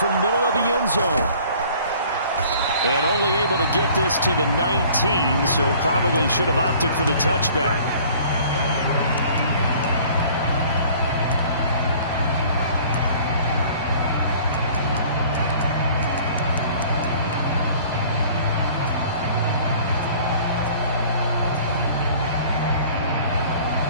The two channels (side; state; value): both; inverted; correlation -0.51